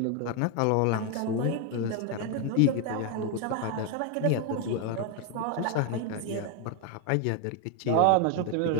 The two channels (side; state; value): both; different; correlation 0.01